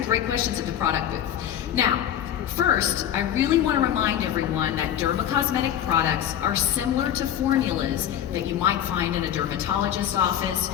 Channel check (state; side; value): quieter; right; 10.4 dB